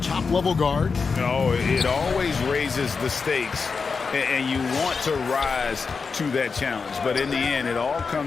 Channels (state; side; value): quieter; right; 5.0 dB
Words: top-level guard? No, it always raises the stakes, and you want to rise to that challenge. But in the end, it all